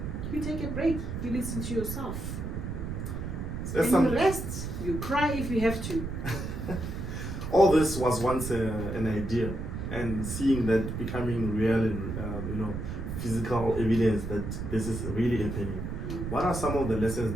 You take a break, you listen to yourself. There's and you rest, you cry if you have to. All this was once an idea, and seeing that becoming real and physical evidence that this is really happening. What are some of the lessons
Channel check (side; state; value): right; noise; rumble, 5 dB below the sound